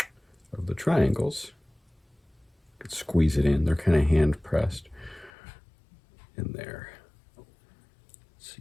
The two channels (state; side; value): drops out; right; at 5.3 s